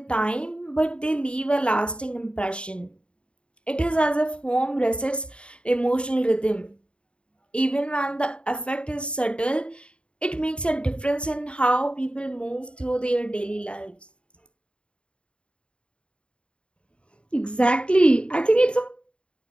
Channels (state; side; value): late; right; 0.056 ms